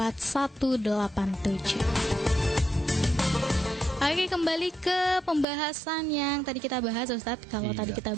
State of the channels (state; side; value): drops out; left; at 5.5 s